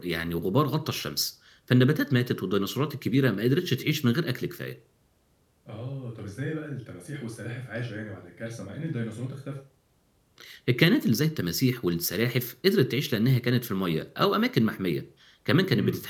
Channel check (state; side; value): identical; both; correlation 1.00